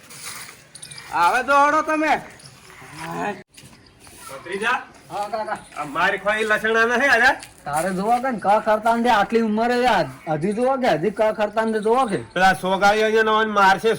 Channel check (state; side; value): identical; both; correlation 1.00